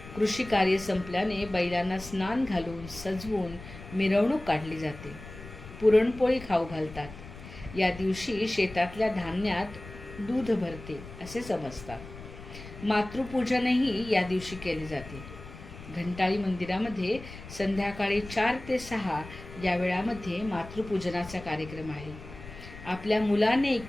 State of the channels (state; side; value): noise; left; rumble, 15 dB below the sound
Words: कृषी कार्य संपल्याने बैलांना स्नान घालून सजवून मिरवणूक काढली जाते. पुरणपोळी खाऊ घालतात. या दिवशी शेतातल्या धान्यात दूध भरते असे समजतात. मातृपूजनही या दिवशी केले जाते. घंटाळी मंदिरामध्ये संध्याकाळी 4 ते 6 या वेळामध्ये मातृपूजनाचा कार्यक्रम आहे. आपल्या मुलाने